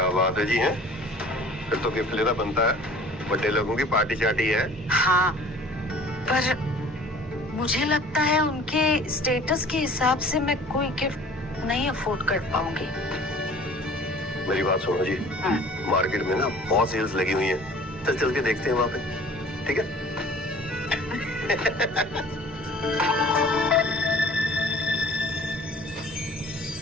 बात है जी, है? फिर तो गिफ्ट लेना बनता है, बड़े लोगों की पार्टी चार्टी है। हाँ, पर मुझे लगता है उनके स्टेटस के हिसाब से मैं कोई गिफ्ट नहीं अफोर्ड कर पाऊंगी। मेरी बात सुनो जी, मार्केट में ना बहुत सेल्स लगी हुई है, चल के देखते हैं वहां पे, ठीक है?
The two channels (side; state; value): both; normal; correlation 0.48